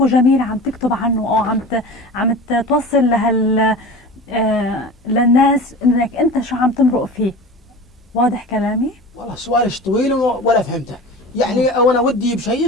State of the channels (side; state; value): both; normal; correlation 0.34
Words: جميل عم تكتب عنه، أو عم توصل للناس إنك أنت شو عم تمرق فيه. واضح كلامي؟ والله سؤالش طويل ولا فهمته يعني، او انا ودي